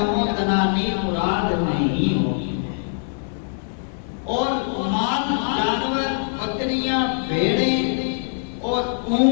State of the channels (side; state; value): right; silent; digital silence